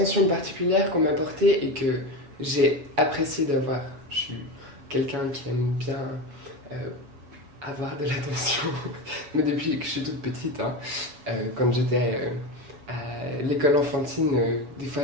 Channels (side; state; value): left; late; 7.1 ms